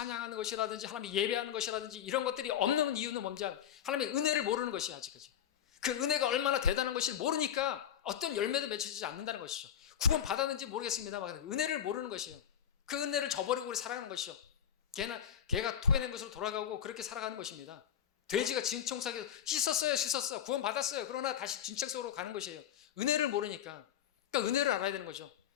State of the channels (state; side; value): quieter; right; 9.5 dB